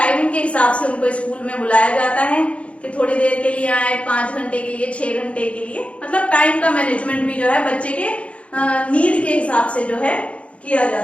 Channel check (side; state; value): right; late; 0.062 ms